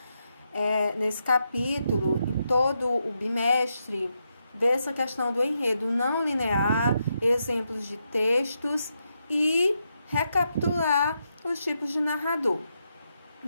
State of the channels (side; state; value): both; inverted; correlation -0.83